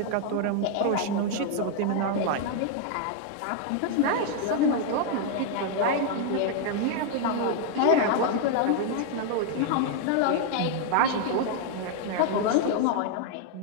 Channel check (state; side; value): different; both; correlation 0.00